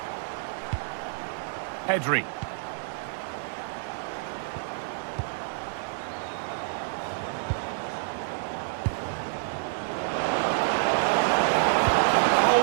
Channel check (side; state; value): left; silent; digital silence